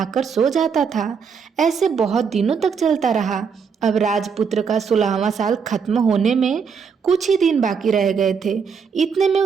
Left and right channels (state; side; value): quieter; left; 6.1 dB